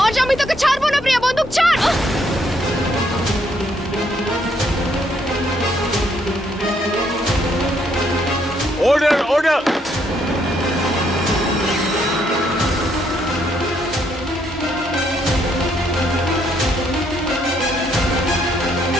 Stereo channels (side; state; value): both; normal; correlation 0.72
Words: আজ আমি তোকে ছাড়বো না প্রিয়া, বন্দুক ছাড়। Order, order.